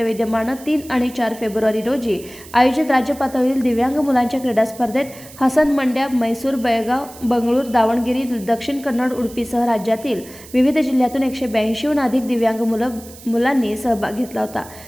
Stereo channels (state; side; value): noise; right; hiss, 19 dB below the sound